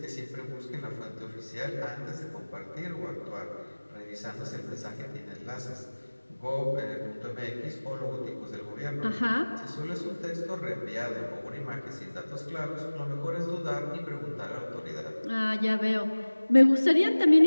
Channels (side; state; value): both; inverted; correlation -1.00